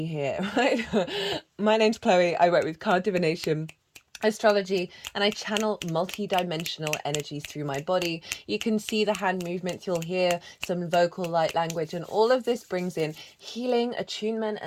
here, right? My name's Chloe. I work with card divination, astrology, and I channel multi-dimensional energies through my body. You can see the hand movements, you'll hear some vocal light language, and all of this brings in healing, attunement,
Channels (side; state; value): both; identical; correlation 1.00